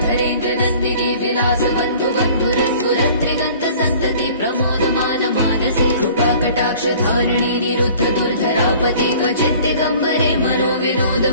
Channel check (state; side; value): inverted; both; correlation -0.48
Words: नन्दिनी विलास बन्धु बन्धुरस्फुरत्रिगन्त सन्तति प्रमोदमान मानसे कृपाकटाक्ष धारिणी निरुद्ध दुर्धरापति क्वचित् दिगम्बरे मनो विनोद